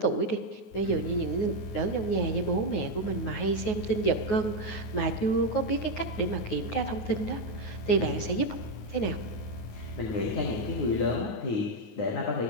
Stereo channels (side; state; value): right; late; 9.5 ms